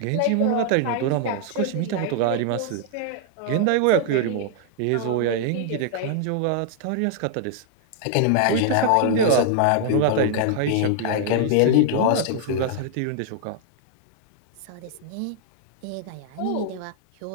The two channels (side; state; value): both; different; correlation 0.00